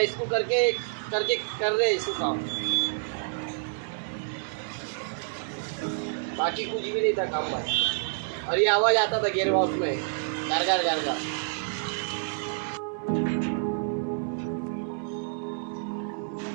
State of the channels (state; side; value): silent; left; 56 dB below the other